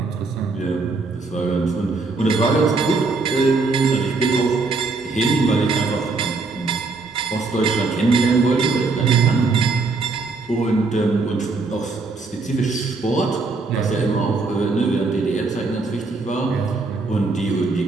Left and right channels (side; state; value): left; quieter; 3.9 dB